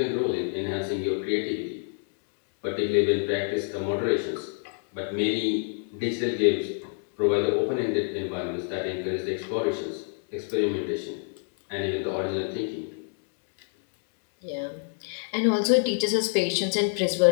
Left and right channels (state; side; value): silent; right; 58 dB below the other